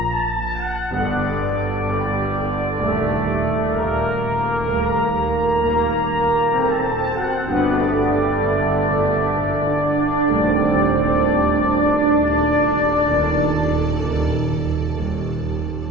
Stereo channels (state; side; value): normal; both; correlation 0.48